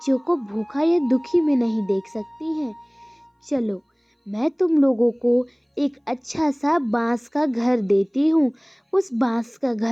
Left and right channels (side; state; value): both; identical; correlation 1.00